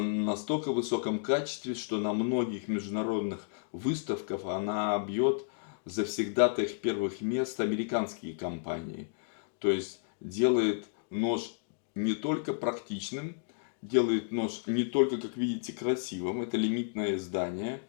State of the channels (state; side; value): silent; right; digital silence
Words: высоком качестве, что на многих международных выставках она бьет завсегдатаев первых мест американские компании. То есть делает нож не только практичным, делает нож не только, как видите, красивым. Это лимитное издание,